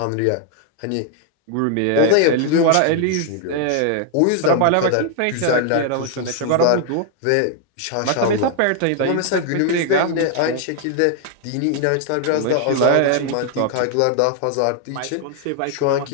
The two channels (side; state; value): both; different; correlation 0.00